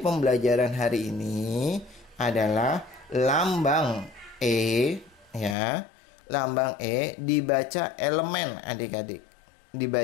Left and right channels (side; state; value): right; drops out; at 5.6 s